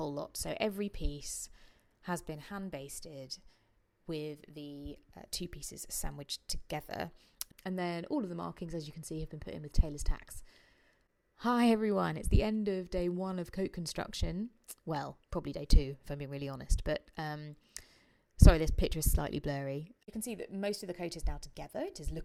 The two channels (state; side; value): identical; both; correlation 1.00